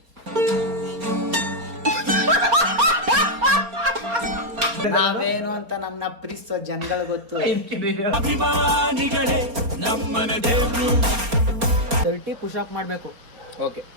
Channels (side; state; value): left; late; 4.3 ms